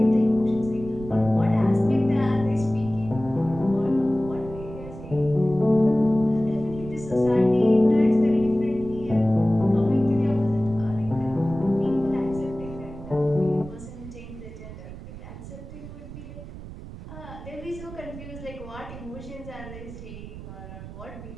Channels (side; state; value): right; noise; rumble, 13 dB below the sound